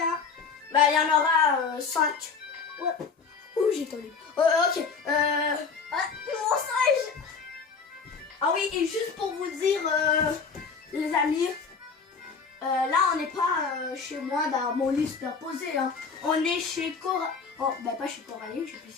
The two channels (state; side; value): quieter; right; 5.3 dB